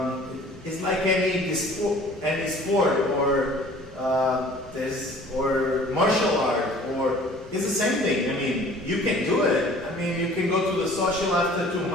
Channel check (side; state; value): both; normal; correlation 0.50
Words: It's like any sport or martial art, or it's the same thing. I mean, you can do it. I mean, you can go to the social after 2